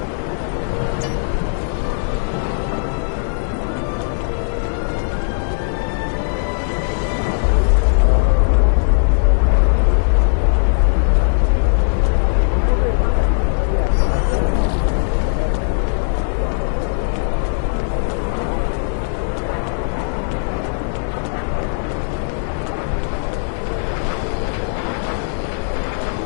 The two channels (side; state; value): right; silent; digital silence